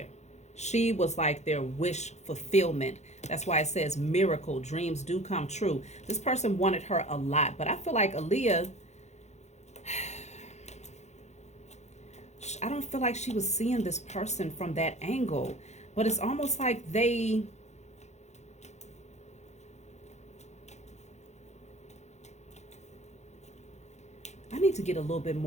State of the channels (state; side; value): late; right; 0.33 ms